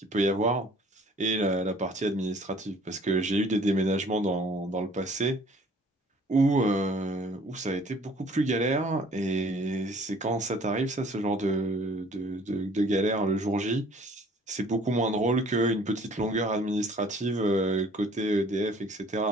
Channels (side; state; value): both; normal; correlation 0.55